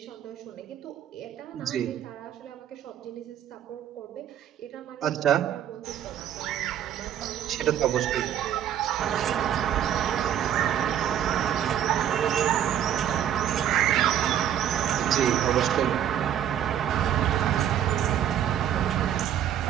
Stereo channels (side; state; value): left; quieter; 10.2 dB